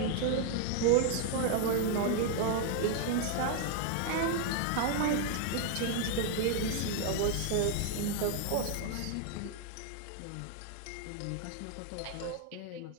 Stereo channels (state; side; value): different; both; correlation 0.00